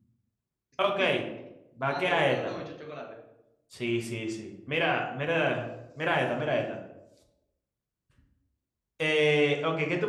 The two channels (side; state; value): both; identical; correlation 1.00